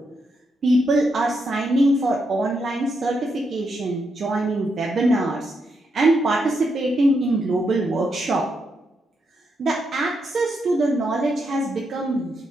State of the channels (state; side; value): normal; both; correlation 0.81